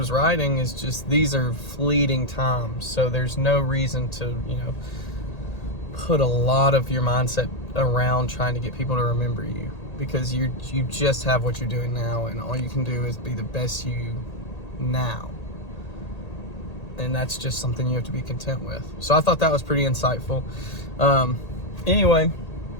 writing, is just, these are fleeting times. So there's no reason to, put a lot of your mindset around trying to get people to remember you, because you just have what you're doing now, and all you can do is be the best you now. And that's just something you have to be content with. So I thought that was pretty insightful. Anyway,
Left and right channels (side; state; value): right; late; 1.8 ms